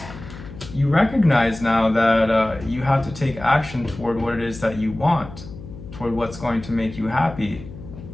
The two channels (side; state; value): left; noise; hum, 14 dB below the sound